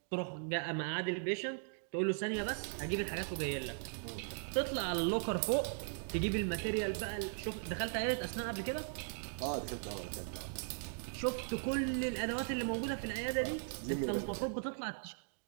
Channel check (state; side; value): silent; left; digital silence